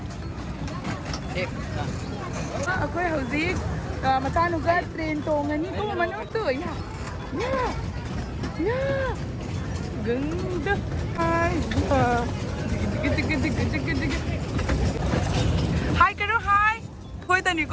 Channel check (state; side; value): identical; both; correlation 1.00